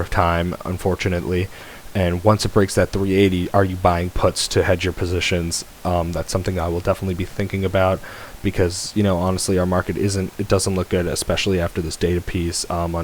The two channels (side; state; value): both; identical; correlation 1.00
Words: time, unfortunately. And once it breaks that 380, are you buying puts to hedge your positions? That's something I will definitely be thinking about because, honestly, our market doesn't look good, especially after this data piece